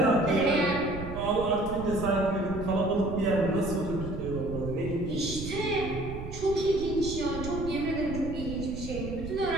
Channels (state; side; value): noise; right; rumble, 9 dB below the sound